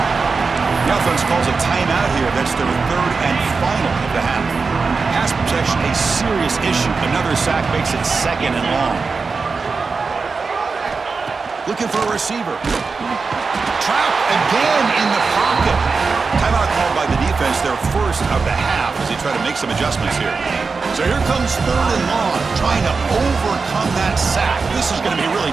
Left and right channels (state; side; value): quieter; left; 4.6 dB